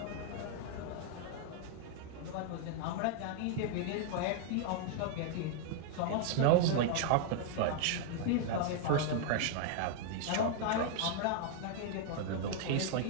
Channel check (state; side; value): different; both; correlation 0.00